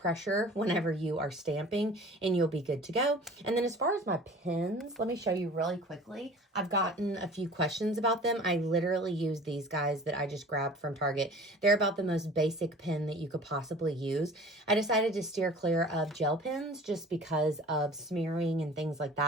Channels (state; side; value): normal; both; correlation 0.44